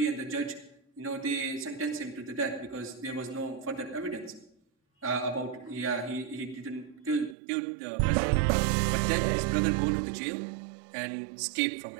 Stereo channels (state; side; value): drops out; left; at 7.4 s